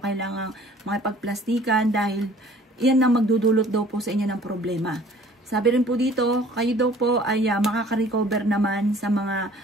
makipagplastikan dahil iyan ang magdudulot daw po sa inyo ng problema. Sabi rin po dito, kayo daw po ay makaka-recover naman sa mga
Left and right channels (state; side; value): normal; both; correlation 0.52